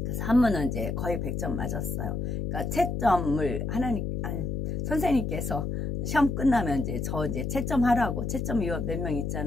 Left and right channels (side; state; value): left; noise; hum, 2 dB below the sound